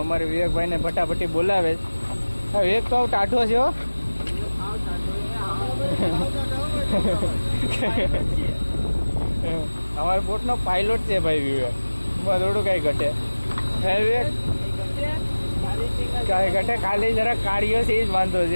અમારે વિવેકભાઈને ફટાફટી બોલાવે છે. વિવેક તો ટાઢો છે હો. અમારા બોટનો પાયલોટ છે ભાઈ વિવેક. થોડું કાંઈ ઘટે હે વિવેક કાંઈ ઘટે. ખાલી જરા કાર્યો છે એ જ વાંધો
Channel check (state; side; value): inverted; both; correlation -1.00